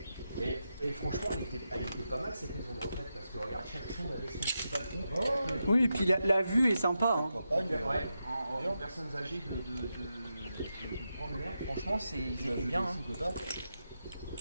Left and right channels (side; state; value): both; inverted; correlation -0.87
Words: Et franchement, elle était pas mal cette maison de retraite, parce que regarde, chaque chambre avait son petit balcon. Oui, et puis la vue est sympa. Hein. Ouais, en personnes âgées de prendre l'air, franchement, ils étaient bien. Hein.